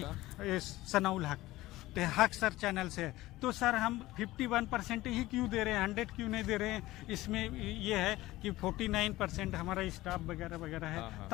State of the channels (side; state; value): right; quieter; 17.6 dB